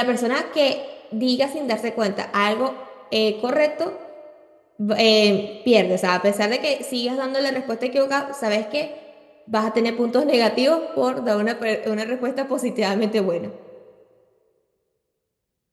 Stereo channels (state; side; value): identical; both; correlation 1.00